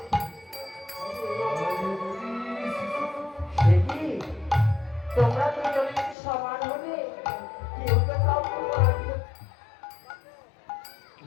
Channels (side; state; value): right; drops out; at 6.2 s